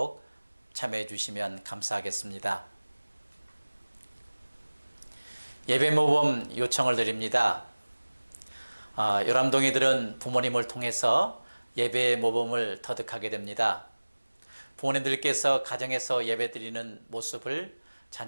참여해 주시면 감사하겠습니다. 예배 모범 요청을 드립니다. 요람동이들은 부모님을 통해서 예배 모범을 터득하게 됩니다. 부모님들께서 가정에서 예배 드리는 모습을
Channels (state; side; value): inverted; both; correlation -1.00